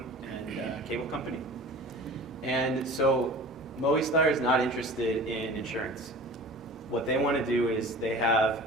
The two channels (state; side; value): normal; both; correlation 0.40